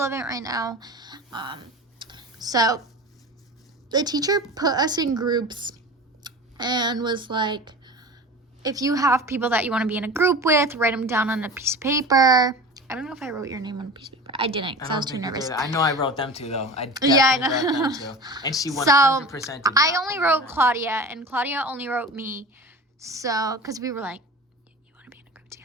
right now. So the teacher put us in groups and was like, if you have people that you want to be in a group with, write them down on a piece of paper. I don't know if I wrote your name on a piece of paper. I didn't because I was too nervous. I know I wrote them too, though. I Yeah, I definitely know. wrote them too. And she 100% So did I not only put wrote them. Claudia, and Claudia only wrote me. So, because we were like, you want to be in a group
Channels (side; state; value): both; normal; correlation 0.34